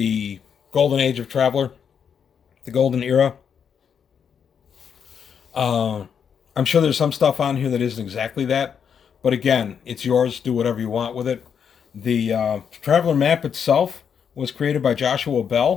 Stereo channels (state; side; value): quieter; right; 7.4 dB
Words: golden age of Traveller, the golden era. I'm sure there's some stuff on here that isn't exactly that, but again, it's yours. Do whatever you want with it. The Traveller map itself was created by Joshua